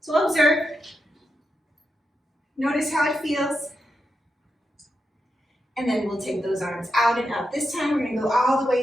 So observe. Notice how it feels. And then we'll take those arms out and up. This time we're going to go all the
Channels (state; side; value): normal; both; correlation 0.86